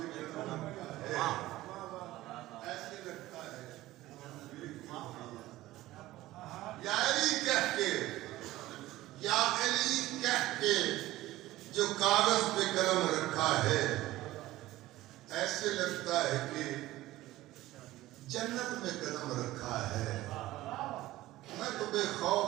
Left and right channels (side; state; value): left; quieter; 16.5 dB